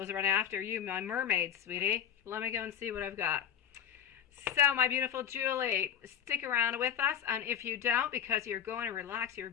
is running after you, my mermaid, sweetie. Let me go and see what I've got. So, my beautiful Julie, stick around with us. And if you don't, because you're going to relax your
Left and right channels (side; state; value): right; quieter; 8.9 dB